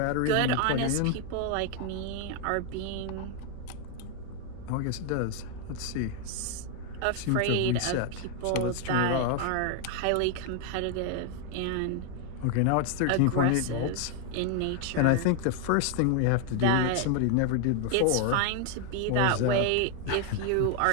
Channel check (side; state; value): both; different; correlation 0.00